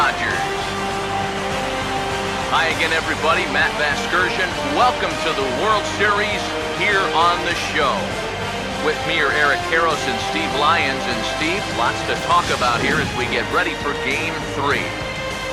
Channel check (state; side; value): identical; both; correlation 1.00